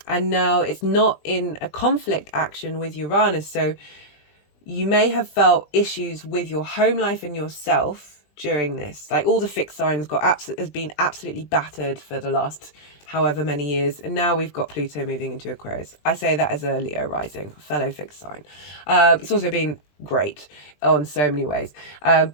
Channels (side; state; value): right; late; 20 ms